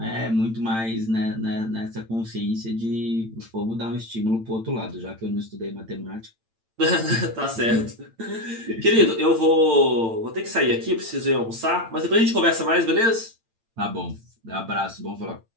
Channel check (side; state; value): left; late; 8.9 ms